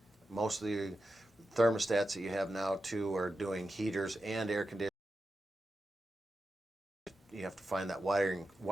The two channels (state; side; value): normal; both; correlation 0.90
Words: Most of the thermostats that you have now too are doing heaters and air conditioning. You have to find that